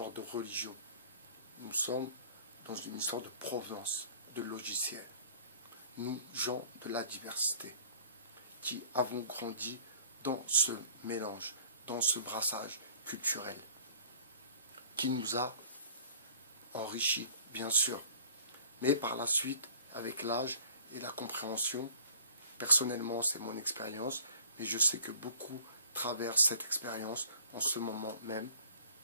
de religion. Nous sommes dans une histoire de provenance, de logiciel. Nous, gens de la diversité, qui avons grandi dans ce mélange, dans ce brassage culturel, qui nous a enrichis, bien sûr. Mais par la suite, avec l'âge et la compréhension, personnellement, c'est mon expérience, mais je sais que beaucoup traversent cette expérience en ce moment même.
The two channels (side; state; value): both; inverted; correlation -0.50